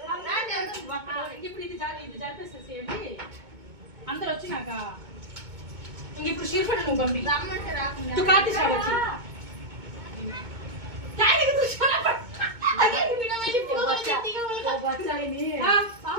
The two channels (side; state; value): left; late; 2.2 ms